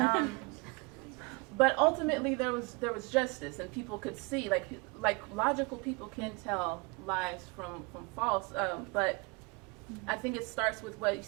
But ultimately there was justice, and people could see, like logical people can tell lies from false, but I think it starts with what you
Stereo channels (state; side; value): quieter; left; 29.5 dB